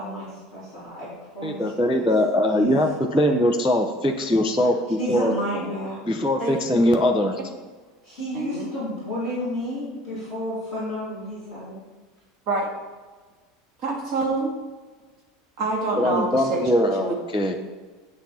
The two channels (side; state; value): both; normal; correlation 0.57